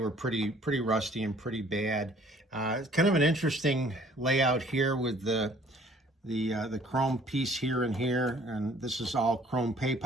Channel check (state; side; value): normal; both; correlation 0.57